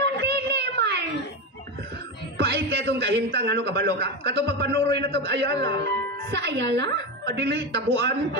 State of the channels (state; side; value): normal; both; correlation 0.16